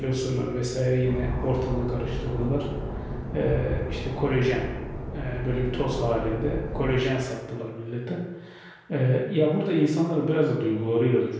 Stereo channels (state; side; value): identical; both; correlation 1.00